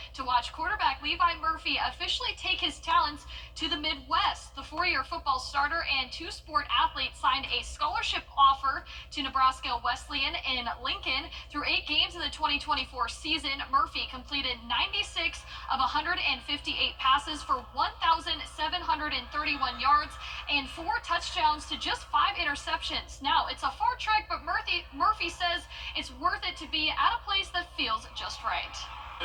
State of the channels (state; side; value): identical; both; correlation 1.00